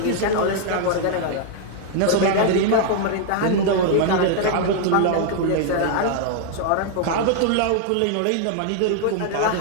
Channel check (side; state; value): both; different; correlation 0.00